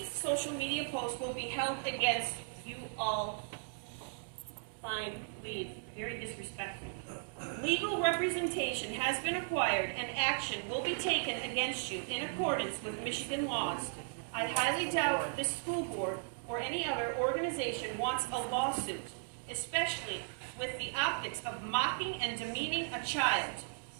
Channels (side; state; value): left; silent; digital silence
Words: social media post will be held against you all. Fine, leave. Very disrespectful. Legal representation has been acquired and action will be taken against you in accordance with Michigan laws. I highly doubt this school board or any other organization wants a lawsuit, especially with the optics of mocking and demeaning a child